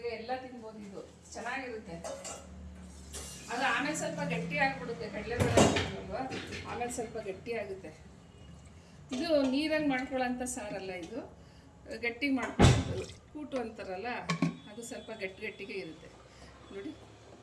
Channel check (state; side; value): identical; both; correlation 1.00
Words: ಎಲ್ಲ ತಿನ್ಬೋದು. ಇದು ಚೆನ್ನಾಗಿರುತ್ತೆ. ಅದು ಆಮೇಲೆ ಸ್ವಲ್ಪ ಗಟ್ಟಿ ಆಗಿಬಿಡುತ್ತೆ. ಕಡಲೆಬೇಳೆ ಹಾಕಿಲ್ವ, ಆಮೇಲೆ ಸ್ವಲ್ಪ ಗಟ್ಟಿ ಆಗುತ್ತೆ. ಇದು ನೀರಂಗೆ ಮಾಡ್ಕೊಳ್ಳೋಂಥ ಸಾರಲ್ಲ, ಇದು ಗಟ್ಟಿ ಮಾಡ್ಕೊಳ್ಳೋದು. ಕೂಟು ಅಂತಾರಲ್ಲ, ಅದು ಸ್ವಲ್ಪ ಗಟ್ಟಿಗೆ ಇರುತ್ತೆ ನೋಡಿ.